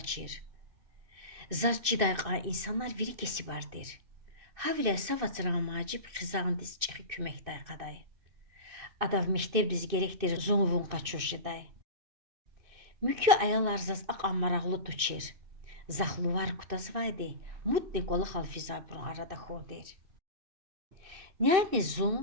Zar cidayqa insanlar viri kesi vardır. Havile savatsara macib xizandis çıxı küməkday qaday. Adav mehteb diz gerektir zonvun qaçuşiday. Mükü ayalar zaz aqan maraqlı tuçir. Zaxluvar kutazvaydi, mutni qolaxal fizabrun arada xodir. Nyani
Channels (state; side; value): late; left; 2.6 ms